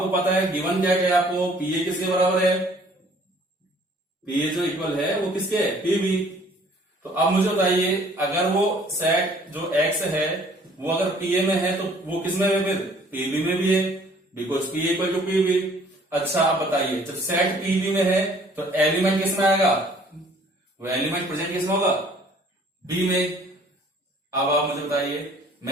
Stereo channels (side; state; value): both; normal; correlation 0.56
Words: पता है गिवन क्या है आपको, pa किसके बराबर है, pa जो इक्वल है वो किसके है, pb। तो अब मुझे बताइए अगर वो सेट जो x है वो अगर pa में है तो वो किस में है, फिर pb में भी है, because pa equal to pb। अच्छा आप बताइए जब सेट pb में है तो एलिमेंट किस में आएगा, वो एलिमेंट प्रेजेंट किस में होगा, b में। अब आप मुझे बताइए